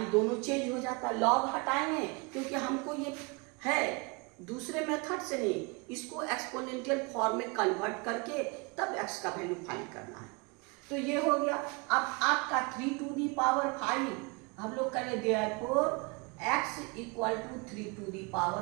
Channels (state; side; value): quieter; left; 29.3 dB